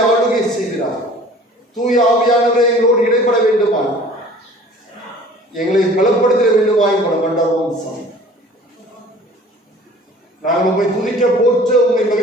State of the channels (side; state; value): both; normal; correlation 0.47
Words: ஆளுகை செய்கிறார். தூய ஆவியானவரை எங்களோடு இடைப்பட வேண்டுமா, எங்களை பலப்படுத்த வேண்டுமா எங்களை மண்டபம் சாமி. நாங்கள் உண்மை துதிக்க போற்ற, உண்மை